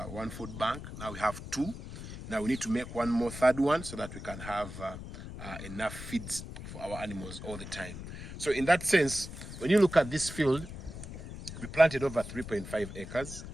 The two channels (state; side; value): noise; left; rumble, 10 dB below the sound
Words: one food bank, now we have two. Now we need to make one more, third one, so that we can have enough feeds for our animals all the time. So in that sense, when you look at this field, we planted over 3.5 acres,